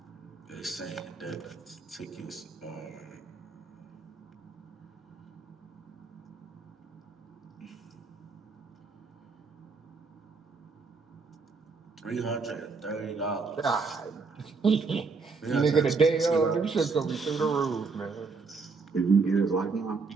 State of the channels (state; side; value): quieter; left; 4.5 dB